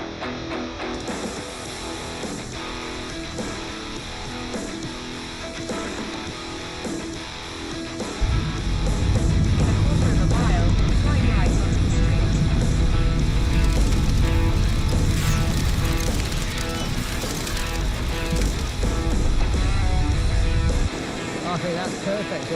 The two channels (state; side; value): identical; both; correlation 1.00